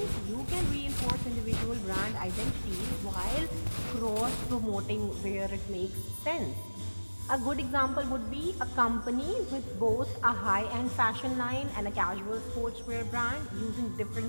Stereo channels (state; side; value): inverted; both; correlation -1.00